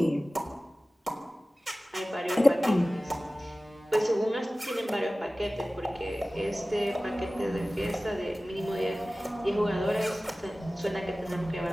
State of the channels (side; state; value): both; normal; correlation 0.97